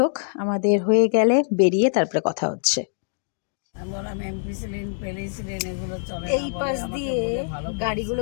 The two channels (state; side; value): silent; right; digital silence